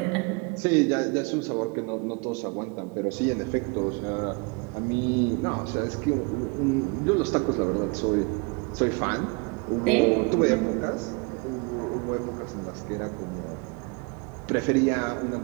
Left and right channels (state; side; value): quieter; left; 30.2 dB